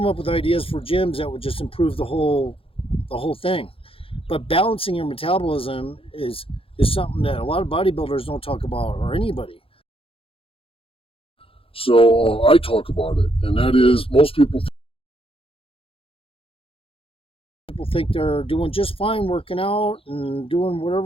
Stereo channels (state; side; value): late; right; 0.27 ms